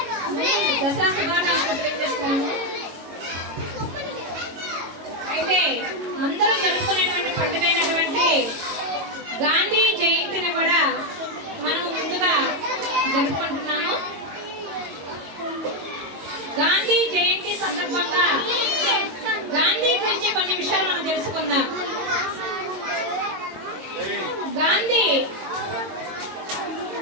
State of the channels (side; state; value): left; late; 22 ms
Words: దసరా శుభాకాంక్షలు తెలియజేస్తున్నాము. అయితే అందరూ జరుపుకునేటువంటి పండుగ అయినటువంటి గాంధీ జయంతిని కూడా మనం ముందుగా జరుపుకుంటున్నాము. గాంధీ జయంతి సందర్భంగా గాంధీ గురించి కొన్ని విషయాలు మనం తెలుసుకుందాం. గాంధీ